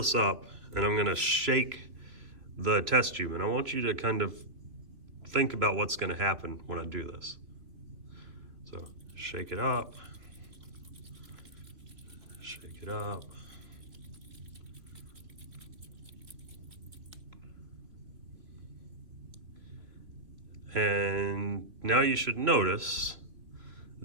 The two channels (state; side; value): late; left; 3.3 ms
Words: up and I'm going to shake the test tube, and I want you to kind of think about what's going to happen when I do this. So shake it up, shake it up. And now you should notice